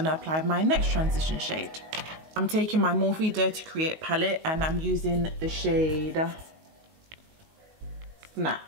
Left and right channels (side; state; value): left; late; 19 ms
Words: to apply my next transition shade. I'm taking my Morphe Dare to Create palette and I'm using the shade